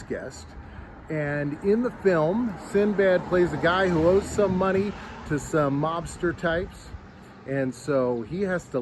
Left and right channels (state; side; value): identical; both; correlation 1.00